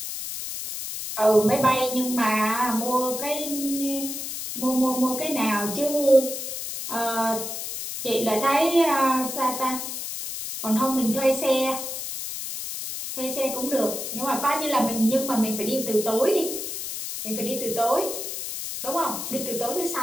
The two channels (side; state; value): left; noise; hiss, 6 dB below the sound